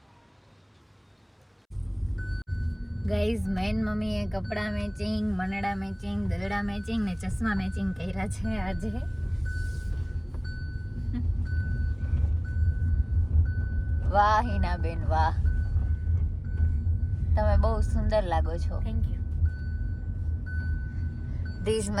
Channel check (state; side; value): identical; both; correlation 1.00